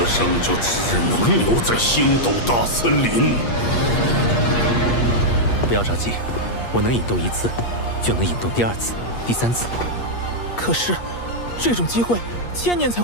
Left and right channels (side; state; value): right; late; 8.5 ms